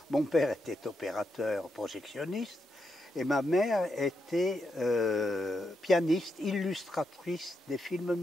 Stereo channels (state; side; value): normal; both; correlation 0.83